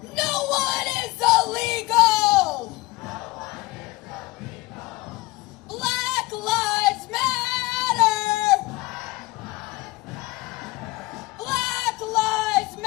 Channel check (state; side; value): quieter; right; 20.6 dB